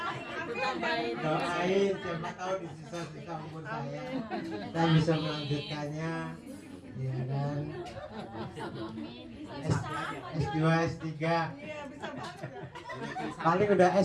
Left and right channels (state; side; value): identical; both; correlation 1.00